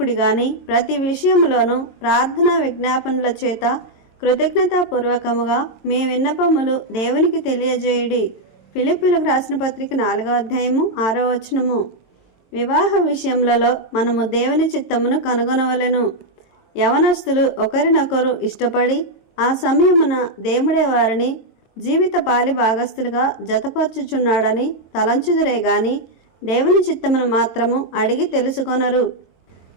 గాని ప్రతి విషయములోనూ ప్రార్థనా విజ్ఞాపనల చేత కృతజ్ఞతాపూర్వకముగా మీ విన్నపములు దేవునికి తెలియజేయుడి. ఫిలిప్పీలకు రాసిన పత్రిక 4వ అధ్యాయము 6వ వచనము. వివాహ విషయములలో మనము దేవుని చిత్తమును కనుగొనవలెను. యవనస్తులు ఒకరినొకరు ఇష్టపడి ఆ సమయమున దేవుడే వారిని జీవిత పాలి భాగస్థులుగా జతపరచుచున్నాడని తలంచుదురే గాని దేవుని చిత్తమును మాత్రము అడిగి తెలుసుకొనరు.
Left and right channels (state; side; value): late; right; 22 ms